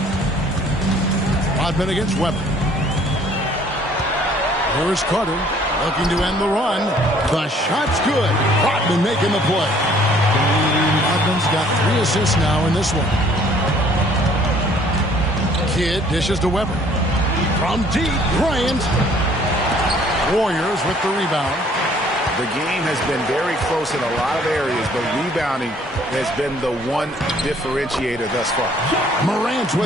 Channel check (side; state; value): both; normal; correlation 0.58